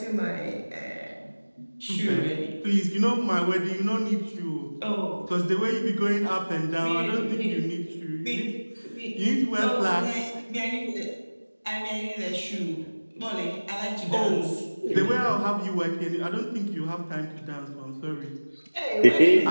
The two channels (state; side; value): inverted; both; correlation -1.00